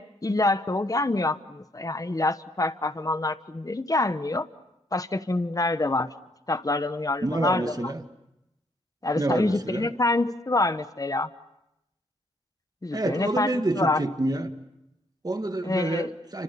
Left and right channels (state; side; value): normal; both; correlation 0.69